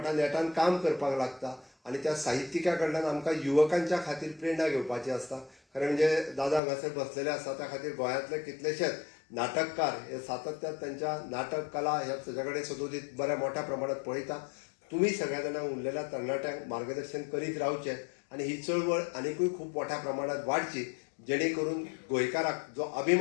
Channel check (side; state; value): right; drops out; at 6.6 s